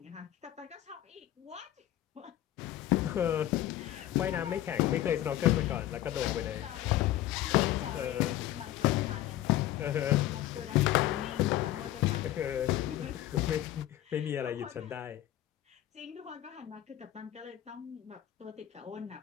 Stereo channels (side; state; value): right; quieter; 13.6 dB